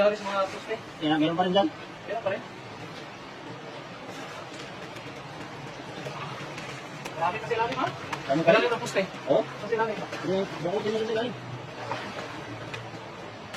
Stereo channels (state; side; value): identical; both; correlation 1.00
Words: sa mga suste. Meron pa rin dyan? Meron pa rin. Marami kasi lalim, ha? Dami pa rin? Lalim ng puste. Oo? Kasi lalim. Bakit din kasi lalim?